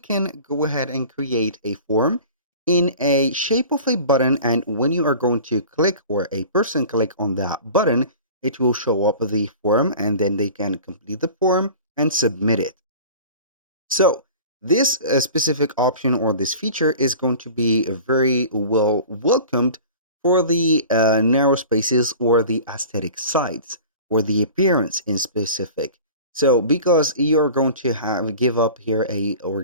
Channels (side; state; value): both; inverted; correlation -0.40